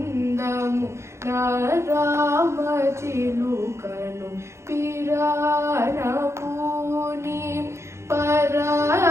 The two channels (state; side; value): late; left; 0.13 ms